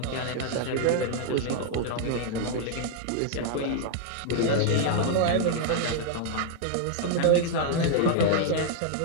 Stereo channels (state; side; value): different; both; correlation -0.01